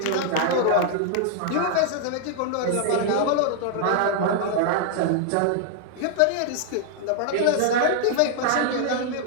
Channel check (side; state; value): both; different; correlation 0.00